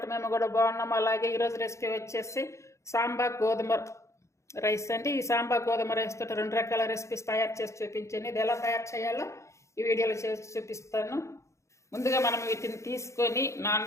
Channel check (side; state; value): right; late; 0.14 ms